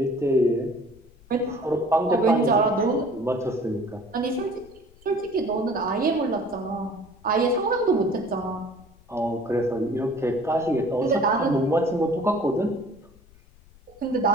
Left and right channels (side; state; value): left; noise; rumble, 26 dB below the sound